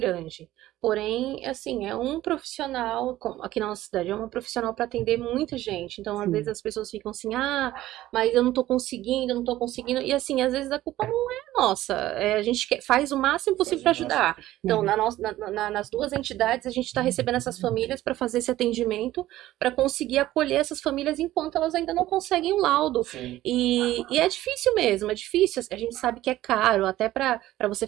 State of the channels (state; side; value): quieter; left; 15.1 dB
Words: Porém, assim, é um profissional, aqui na nossa cidade, é um profissional para atender muita gente. Então, às vezes as pessoas ficam assim, mas eu não tô conseguindo. E assim, às vezes a culpa não é nossa. A gente faz o máximo possível para ajudar. Então, nas duas entidades, a gente está recebendo essas famílias para fazer esse atendimento, para conseguir acolher essas famílias enquanto elas ainda não conseguem o laudo. E é difícil mesmo, é difícil. A gente sabe que é caro, até para você